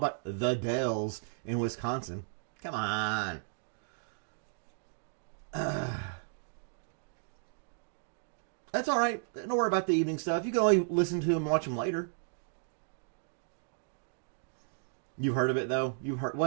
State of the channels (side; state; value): left; silent; digital silence